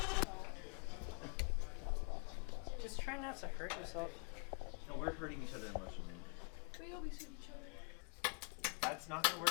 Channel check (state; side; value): quieter; right; 36.1 dB